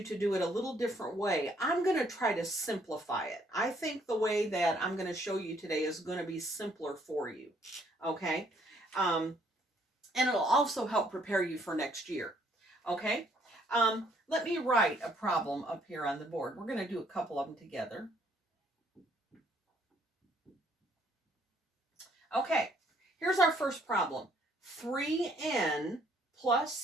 to do it a little different way. I'm going to try to simplify it. I think the way that I'm going to show you today is going to be simpler for you, okay? And it'll also help prepare you for next year, okay? Let me write a problem up here on the board. We're going to do a couple of them together. Okay, here's our first problem. 3n plus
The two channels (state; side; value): normal; both; correlation 0.66